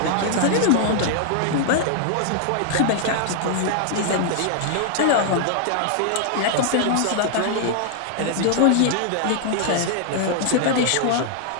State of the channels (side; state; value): both; different; correlation -0.01